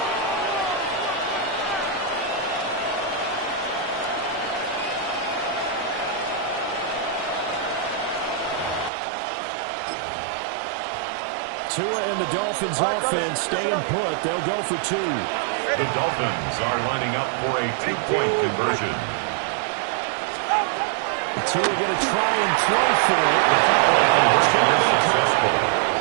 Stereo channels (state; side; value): drops out; left; at 8.9 s